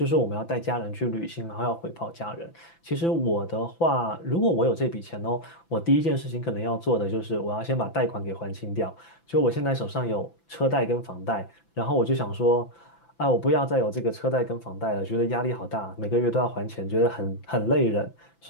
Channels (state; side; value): late; right; 5.9 ms